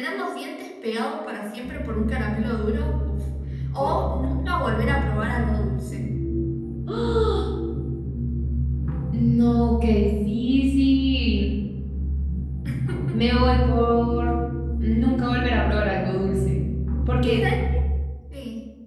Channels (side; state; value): both; identical; correlation 1.00